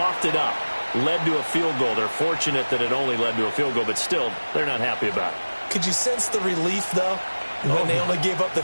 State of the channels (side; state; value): both; inverted; correlation -1.00